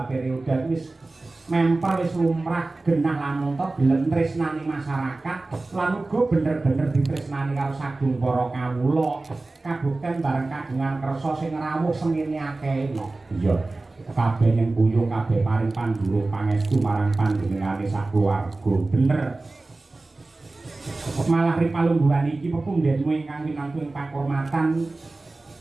periode wis mempel wis lumrah genah lamun to gelem tresnani masyarakat lan uga bener-bener ditresnani karo sagung para kawula kabukten bareng kagungan kersa sing rawuh semene akeh. Iya. Kabeh ning buyung kabeh paring pandhurung pangestu marang panjenengane sakeluarga. Bener. Malah ripalungguhan iki pepundhenmu ingkang winangku ing pakurmatan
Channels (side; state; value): left; quieter; 3.2 dB